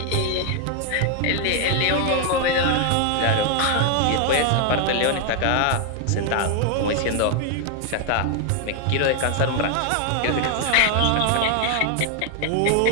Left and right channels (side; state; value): both; different; correlation 0.00